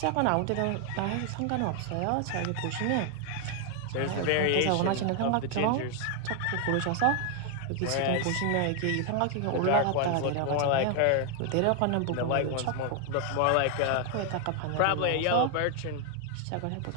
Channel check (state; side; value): different; both; correlation 0.00